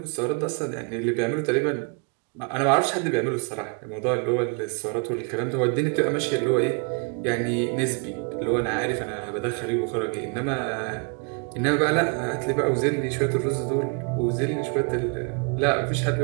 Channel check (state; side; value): quieter; left; 35.7 dB